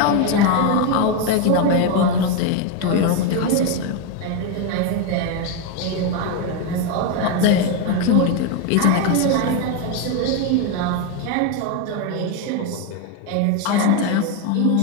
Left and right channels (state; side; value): different; both; correlation 0.02